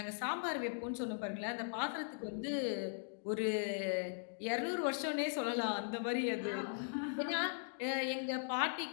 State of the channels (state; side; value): silent; right; digital silence